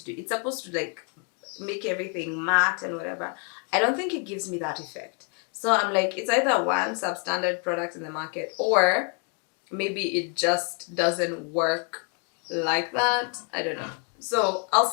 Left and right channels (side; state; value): right; quieter; 37.5 dB